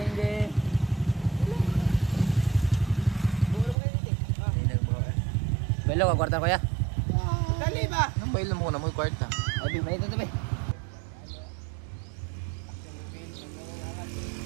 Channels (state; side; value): drops out; left; at 3.8 s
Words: Belo ka kwarta ko ya. Dali ba? Nang bailo mo na mo kwarta. Abi may ito tabi.